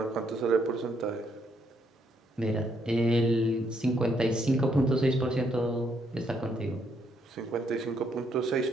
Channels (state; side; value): normal; both; correlation 0.73